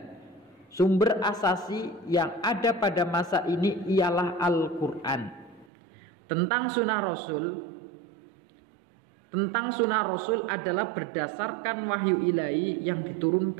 Sumber asasi yang ada pada masa ini ialah Al-Quran. Tentang sunnah Rasul adalah berdasarkan wahyu ilahi yang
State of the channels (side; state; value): left; drops out; at 5.7 s